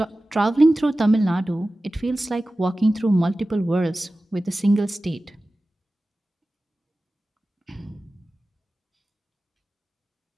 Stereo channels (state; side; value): normal; both; correlation 0.96